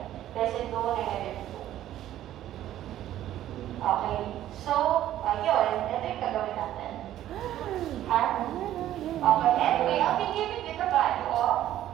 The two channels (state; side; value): quieter; left; 12.7 dB